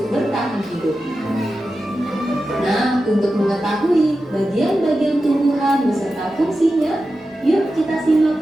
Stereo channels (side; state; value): both; normal; correlation 0.92